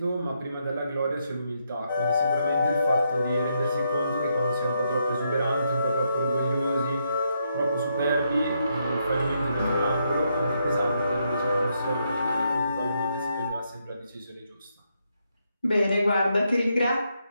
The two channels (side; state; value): both; inverted; correlation -0.79